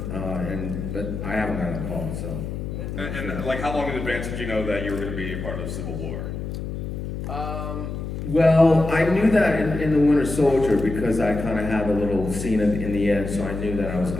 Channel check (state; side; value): noise; left; hum, 6 dB below the sound